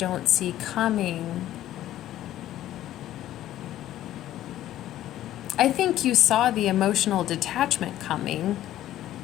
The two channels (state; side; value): quieter; right; 13.2 dB